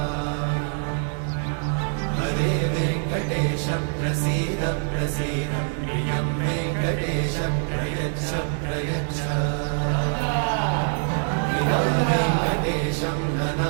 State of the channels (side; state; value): left; silent; 55 dB below the other